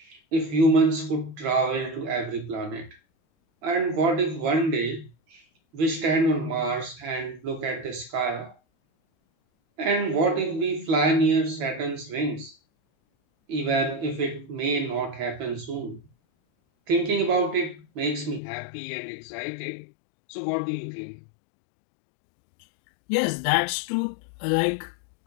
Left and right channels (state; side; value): drops out; right; at 18.4 s